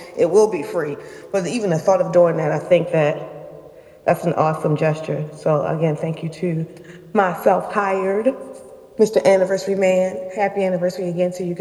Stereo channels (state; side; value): identical; both; correlation 1.00